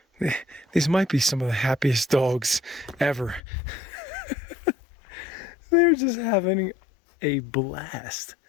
These might be some of the happiest dogs ever. They're just having a blast.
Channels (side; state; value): right; drops out; at 3.4 s